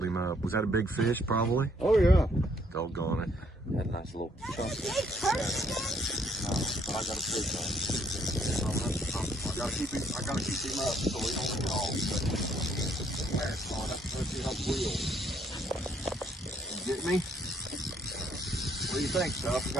him up. Was that a big fish, probably? Oh yeah. Doggone it. Had a nice little chunk. I got a fish on. I gotta keep him up so he don't get off. Let's see how it wheels. You get me? What do you think, Stuff? You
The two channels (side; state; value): both; normal; correlation 0.68